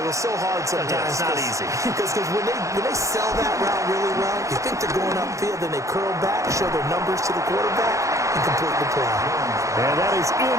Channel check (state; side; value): late; left; 0.15 ms